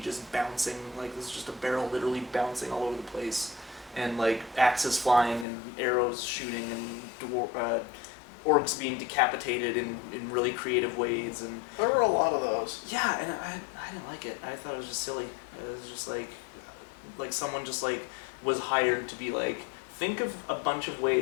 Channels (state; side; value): drops out; right; at 5.5 s